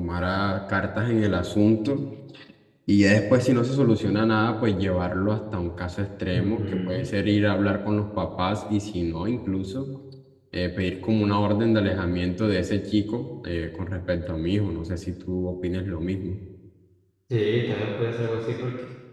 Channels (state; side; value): identical; both; correlation 1.00